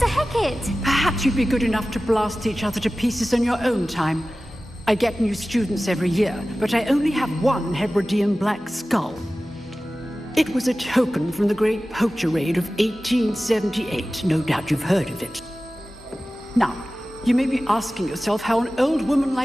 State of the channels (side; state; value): both; normal; correlation 0.96